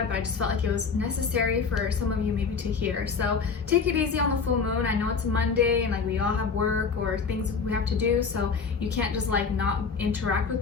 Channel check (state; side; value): quieter; right; 5.4 dB